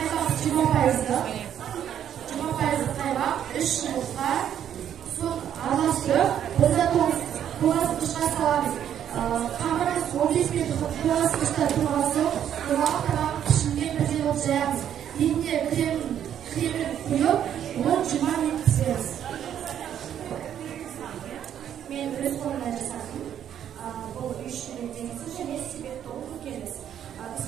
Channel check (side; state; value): left; quieter; 9.8 dB